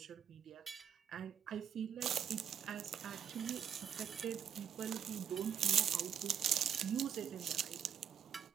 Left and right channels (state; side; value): quieter; left; 8.5 dB